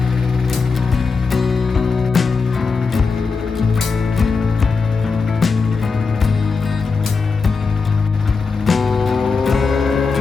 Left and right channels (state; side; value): quieter; right; 4.6 dB